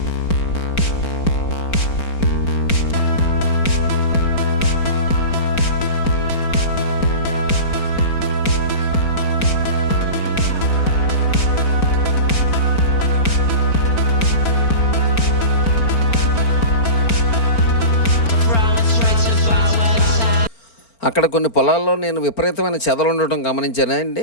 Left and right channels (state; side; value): late; right; 4.4 ms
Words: అక్కడ కొన్ని పొలాల్లో నేను విపరీతమైన చెదలు ఉండటం గమనించానండి.